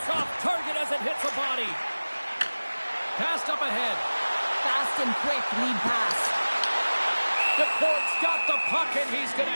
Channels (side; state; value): both; inverted; correlation -1.00